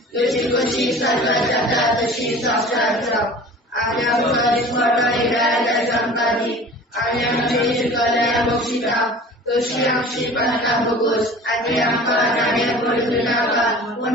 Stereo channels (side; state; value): both; normal; correlation 0.42